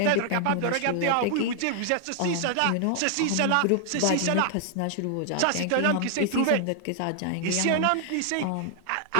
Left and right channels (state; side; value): different; both; correlation 0.00